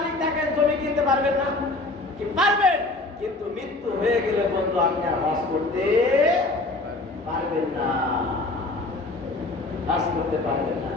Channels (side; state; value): right; quieter; 3.0 dB